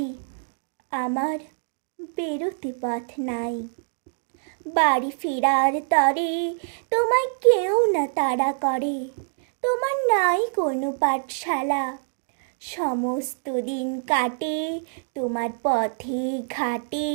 আমার বেরোতে পথ নাই। বাড়ি ফেরার তরে তোমায় কেউ না তাড়া করে, তোমার নাই কোনো পাঠশালা। সমস্ত দিন কাটে তোমার পথে ঘাটে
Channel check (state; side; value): silent; left; digital silence